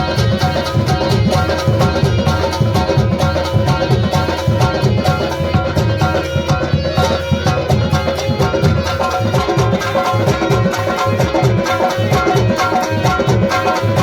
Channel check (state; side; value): identical; both; correlation 1.00